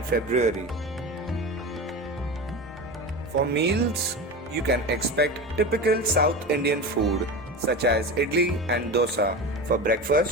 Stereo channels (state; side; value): normal; both; correlation 0.26